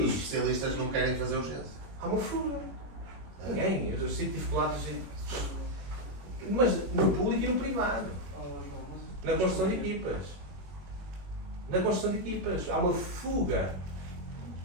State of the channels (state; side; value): late; left; 21 ms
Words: especialistas não querem fazer urgência. Há uma fuga. Ninguém. Eu sinto dificuldades. Mas no público e no privado. Na construção de equipas. Na construção de equipas. Há uma fuga.